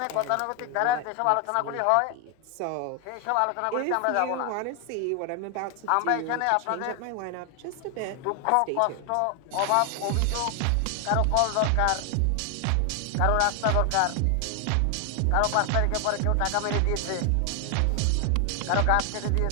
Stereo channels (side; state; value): both; different; correlation 0.00